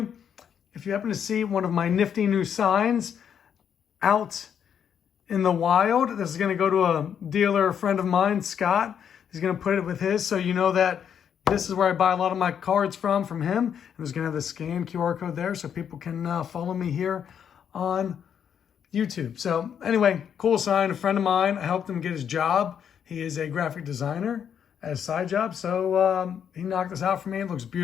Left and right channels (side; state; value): right; quieter; 8.3 dB